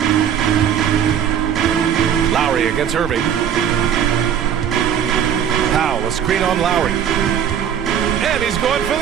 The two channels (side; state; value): left; quieter; 8.9 dB